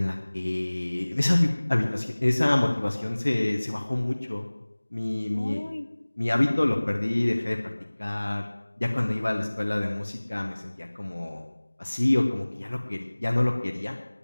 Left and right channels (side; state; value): both; inverted; correlation -1.00